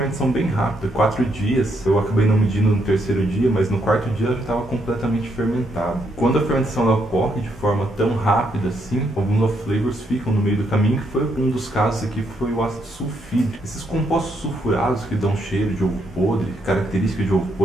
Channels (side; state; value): both; normal; correlation 0.76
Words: bem rápida, 4 dias, eu acabei não medindo no terceiro dia, mas no quarto dia ela já estava completamente fermentada. Quando a fermentação ela ocorre de forma tão rápida assim, alguns off-flavors ficam no meio do caminho, que foi um dos casos aqui, foi o ácido sulfídrico. Esses compostos sulfurados que dão cheiro de ovo podre, características de ovo